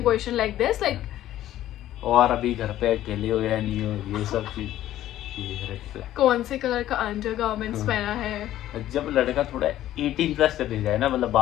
question like this, like, और अभी घर पे अकेले हो या नहीं हो, ये सब चीज, ये रेड फ्लैग। कौन से कलर का अंडर गारमेंट्स पहना है। जब लड़का थोड़ा 18 प्लस चले जाए ना, मतलब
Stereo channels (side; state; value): right; quieter; 13.3 dB